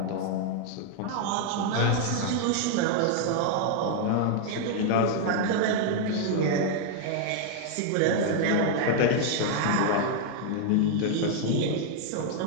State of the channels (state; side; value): different; both; correlation 0.00